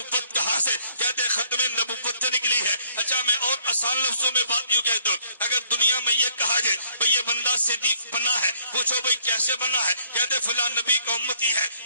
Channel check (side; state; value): both; inverted; correlation -0.65